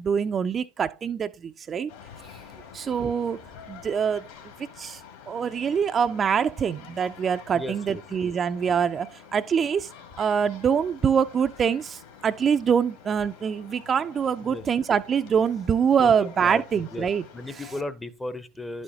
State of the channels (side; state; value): left; quieter; 6.5 dB